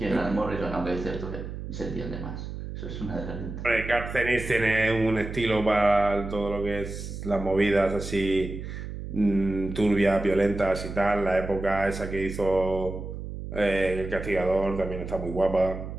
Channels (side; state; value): right; noise; hum, 8 dB below the sound